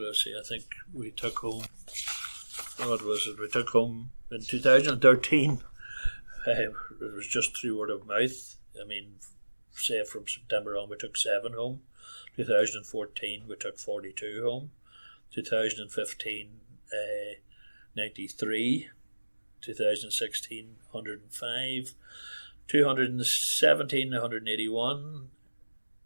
I say? I think we took home. What was it? We took home in 2013. It was just through word of mouth. I mean, say from September on, we took 7 home. 2014, we took 42 home. 2015, 93. 2016, 105. 2017, 181.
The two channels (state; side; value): inverted; both; correlation -1.00